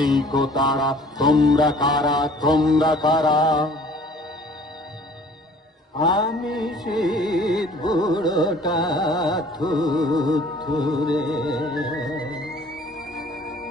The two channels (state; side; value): normal; both; correlation 0.52